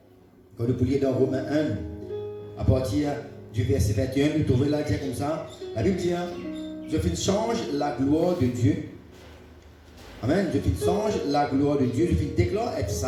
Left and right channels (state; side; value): identical; both; correlation 1.00